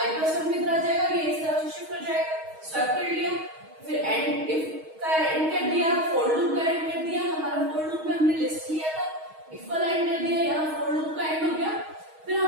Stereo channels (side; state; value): left; late; 6.4 ms